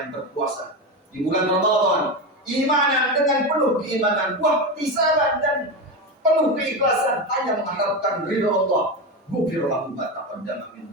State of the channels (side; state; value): both; normal; correlation 0.17